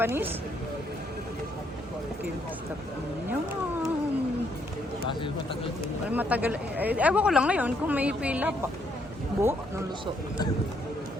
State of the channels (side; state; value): both; normal; correlation 0.72